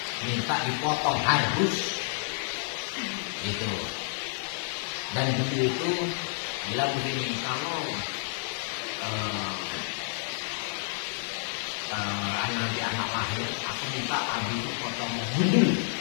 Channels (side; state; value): right; silent; digital silence